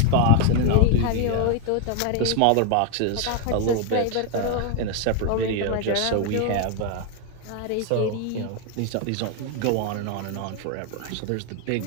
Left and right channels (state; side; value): different; both; correlation 0.01